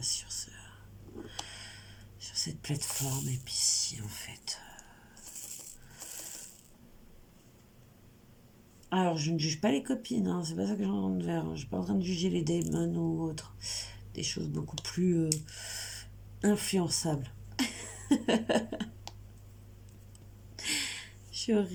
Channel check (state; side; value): identical; both; correlation 1.00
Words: sur cette plateforme. Et puis si, en fait... Alors, je ne juge pas les copines, hein, c'est pas ça que j'en ai de faire. Je suis pas en train de juger les démons ou autres. Des choses beaucoup plus influençables. Je suis